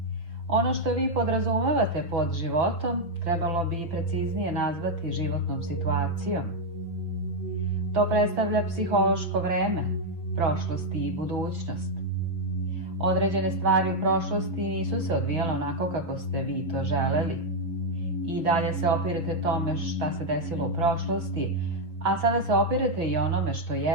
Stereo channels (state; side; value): late; left; 6.0 ms